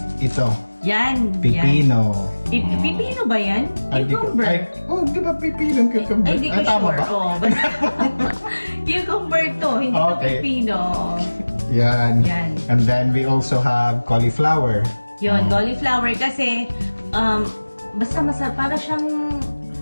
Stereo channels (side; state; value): both; inverted; correlation -1.00